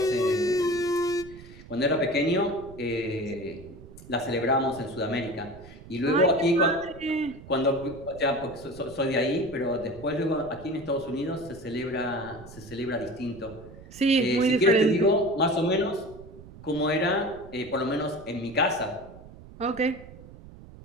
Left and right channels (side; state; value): right; noise; rumble, 18 dB below the sound